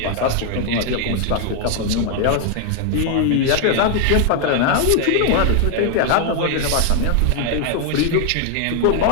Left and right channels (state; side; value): different; both; correlation 0.00